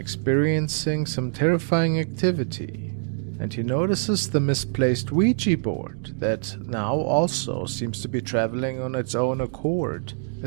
some terrifying activity. And he notices the misplaced Ouija board that now also seems to be traveling on its own accord, a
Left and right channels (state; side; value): silent; left; digital silence